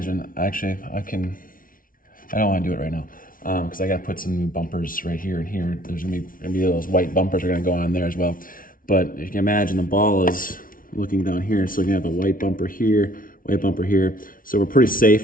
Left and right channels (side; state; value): right; late; 0.40 ms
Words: actually I don't want to do it right now because I got to put some new bumpers right here and here. There's gonna be those white bumpers are gonna go on there as well. But if you can imagine, the ball is looking down here, so you have a white bumper here, white bumper here. So we're pretty